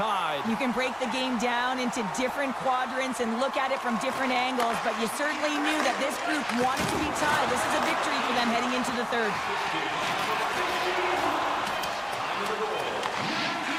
You can break the game down into different quadrants and look at it from different angles, but you certainly knew that this group wanted to be tied. This is a victory for them heading into the third.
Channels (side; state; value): both; identical; correlation 1.00